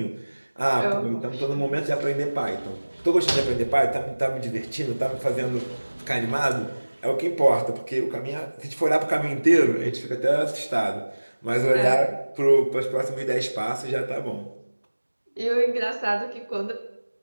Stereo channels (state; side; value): inverted; both; correlation -1.00